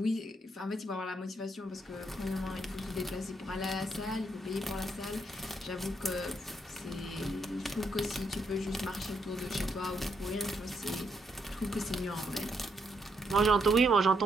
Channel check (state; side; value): normal; both; correlation 0.76